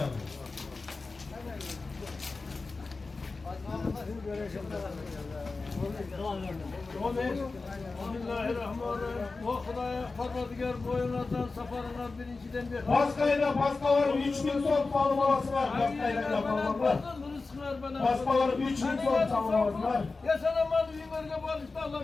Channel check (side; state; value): right; quieter; 3.8 dB